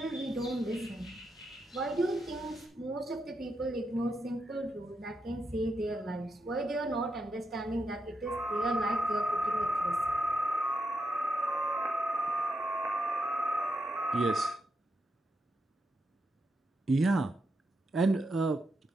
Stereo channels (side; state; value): both; normal; correlation 0.84